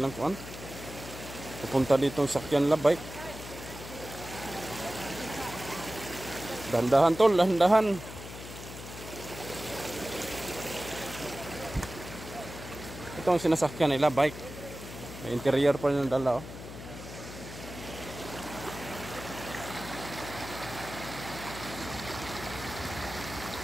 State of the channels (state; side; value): noise; left; hum, 12 dB below the sound